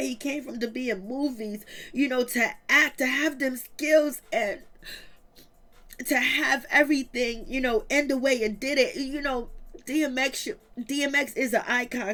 he came from to be in movies, to act, to have them skills, and to have everything, end the way it did it. DMX is an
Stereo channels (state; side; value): identical; both; correlation 1.00